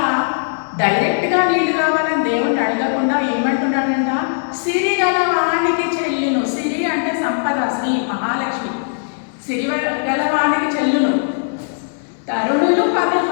డైరెక్ట్గా నీళ్లు కావాలని దేవుణ్ణి అడగకుండా ఏమంటున్నాడంట? సిరి గలవానికి చెల్లును. సిరి అంటే సంపద, శ్రీ మహాలక్ష్మి. సిరి గలవానికి చెల్లును తరుణులు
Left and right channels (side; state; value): right; silent; 67 dB below the other